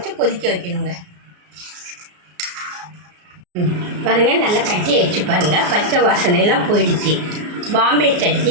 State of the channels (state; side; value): late; left; 34 ms